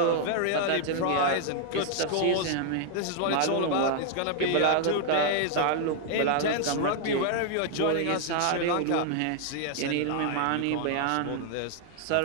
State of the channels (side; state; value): both; different; correlation 0.00